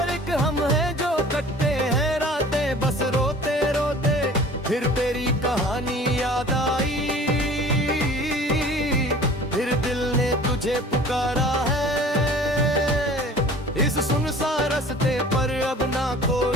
एक हम हैं जो कटते हैं रातें बस रोते रोते। फिर तेरी कहानी याद आई, फिर दिल ने तुझे पुकारा है। इस सुनसान रास्ते पर अब ना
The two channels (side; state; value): both; normal; correlation 0.46